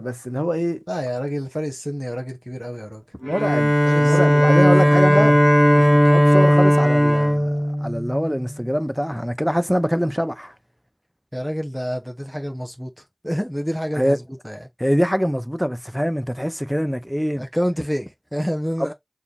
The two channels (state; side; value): identical; both; correlation 1.00